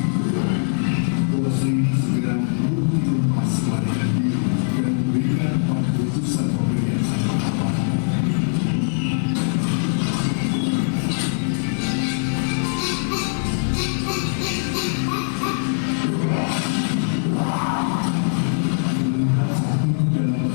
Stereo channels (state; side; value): silent; right; digital silence